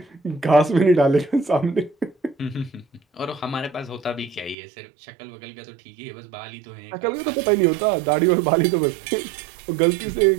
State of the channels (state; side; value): drops out; left; at 4.5 s